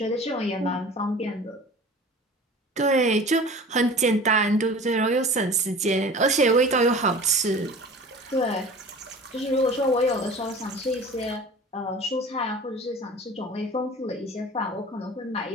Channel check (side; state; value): both; normal; correlation 0.40